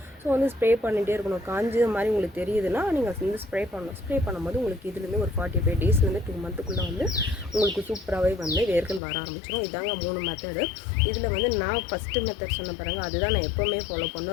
ஸோ வந்து ஸ்ப்ரே பண்ணிகிட்டே இருக்கணும். காஞ்ச மாதிரி உங்களுக்கு தெரியுதுன்னா நீங்கள் வந்து ஸ்ப்ரே பண்ணணும். ஸ்ப்ரே பண்ணும்போது உங்களுக்கு இதுலேருந்து ஒரு 45 டேஸ்லேருந்து 2 மந்த்துக்குள்ளே வந்து உங்களுக்கு சூப்பராகவே வந்து வேர்கள் வர ஆரம்பிச்சிடும். இதாங்க 3 மெத்தடு. இதில் வந்து நான் ஃபஸ்ட்டு மெத்தட் சொன்ன பாருங்கள், அதுதான் நான் எப்போவுமே ஃபாலோ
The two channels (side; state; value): right; drops out; at 9.0 s